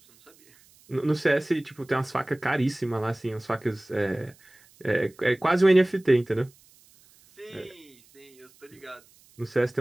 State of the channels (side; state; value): right; noise; hiss, 29 dB below the sound